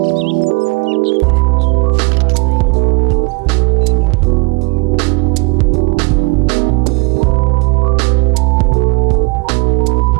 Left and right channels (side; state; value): left; quieter; 29.7 dB